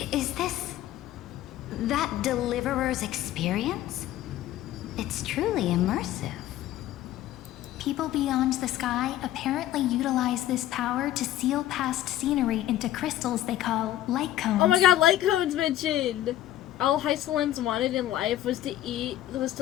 Is this that deliverer's experience? It's truly immersive. People beyond the sky apparently utilize this power to seal past scenery into crystals they call light cones. Oh my god, light cones mentioned! All Hysolins wanted in life was to eat,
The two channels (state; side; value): quieter; right; 13.5 dB